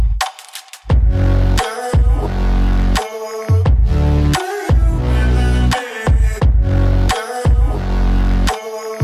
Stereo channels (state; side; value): identical; both; correlation 1.00